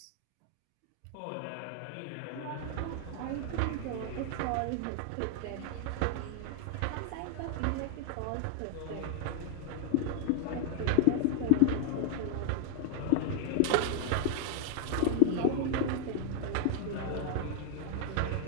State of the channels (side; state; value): both; different; correlation 0.00